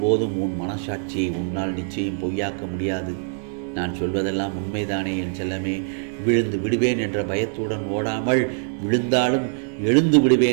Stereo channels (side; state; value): left; silent; digital silence